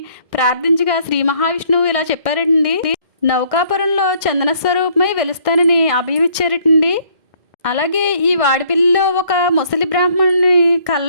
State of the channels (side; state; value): left; late; 1.6 ms